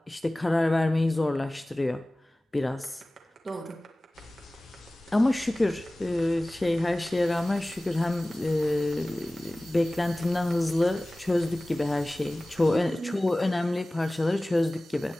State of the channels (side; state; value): both; normal; correlation 0.98